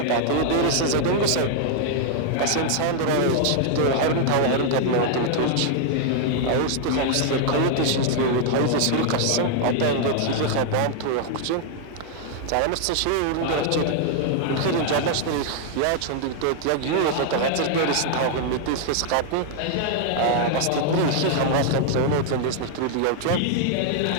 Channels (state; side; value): different; both; correlation 0.00